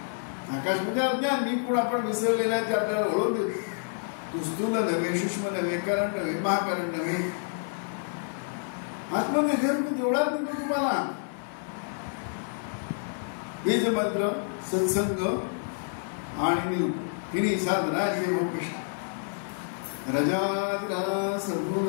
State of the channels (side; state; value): right; silent; 55 dB below the other